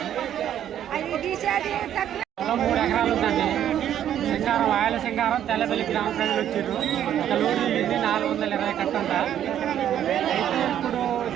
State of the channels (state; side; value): quieter; left; 10.5 dB